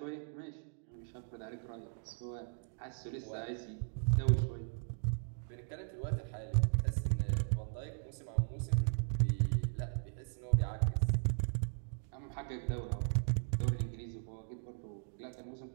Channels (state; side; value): silent; left; digital silence